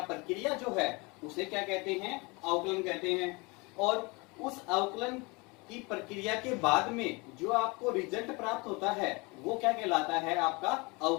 प्रक्रिया जो है उसे क्या कहते हैं? अवकलन कहते हैं। और उस अवकलन की प्रक्रिया के बाद में जो आपको रिजल्ट प्राप्त होता है वो क्या कहलाता है? आपका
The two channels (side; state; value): right; quieter; 27.1 dB